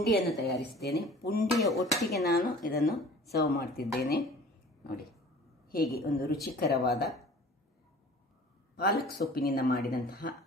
ತಯಾರಿಸಿದ್ದೇನೆ. ಪುಂಡಿಯ ಒಟ್ಟಿಗೆ ನಾನು ಇದನ್ನು ಸರ್ವ್ ಮಾಡ್ತಿದ್ದೇನೆ. ನೋಡಿ ಹೇಗೆ ಒಂದು ರುಚಿಕರವಾದ ಪಾಲಕ್ ಸೊಪ್ಪಿನಿಂದ ಮಾಡಿದಂತಹ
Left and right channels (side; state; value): both; normal; correlation 0.46